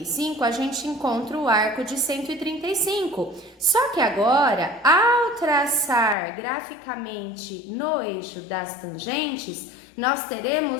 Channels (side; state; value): right; drops out; at 6.2 s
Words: a gente encontra o arco de 135. Só que agora, ao traçar graficamente no eixo das tangentes, nós